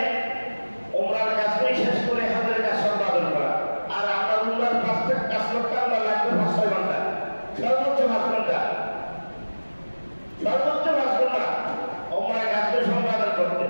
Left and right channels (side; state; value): both; inverted; correlation -1.00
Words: উমরার কাজগুলি শেষ করে হজের কাজ সম্পাদন করা, আর আমরা উমরার কাজ করতে আমরা লাগবে 5-6 ঘন্টা, সর্বোচ্চ 5 ঘন্টা, সর্বোচ্চ 5 ঘন্টা উমরার কাজগুলি সম্পাদন করতে।